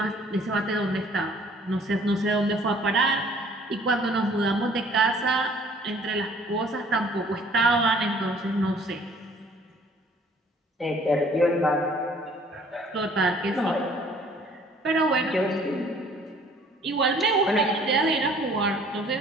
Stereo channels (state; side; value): normal; both; correlation 0.56